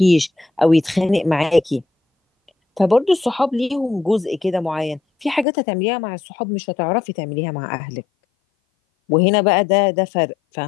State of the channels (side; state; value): right; drops out; at 5.5 s